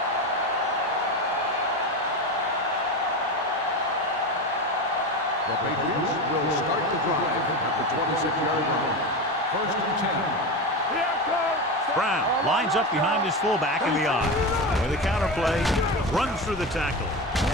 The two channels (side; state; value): both; normal; correlation 0.21